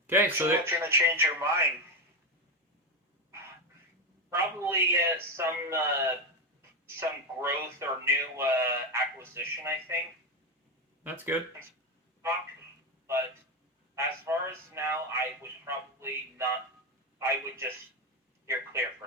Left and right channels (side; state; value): both; normal; correlation 0.12